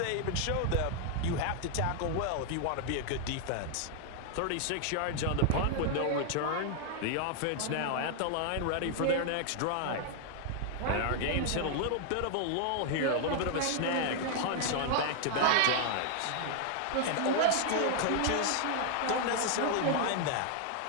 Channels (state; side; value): different; both; correlation 0.00